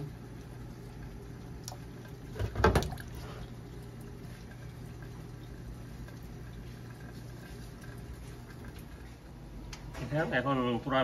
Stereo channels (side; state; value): both; identical; correlation 1.00